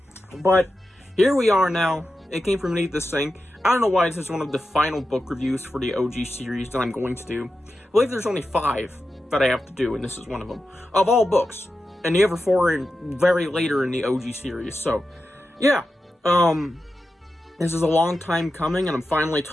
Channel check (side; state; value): both; normal; correlation 0.91